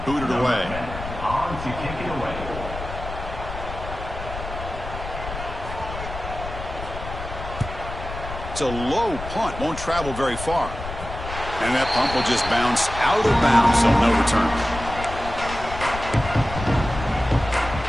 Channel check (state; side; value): noise; left; rumble, 9 dB below the sound